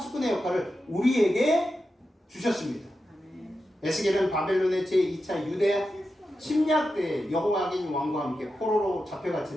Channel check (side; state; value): both; normal; correlation 0.90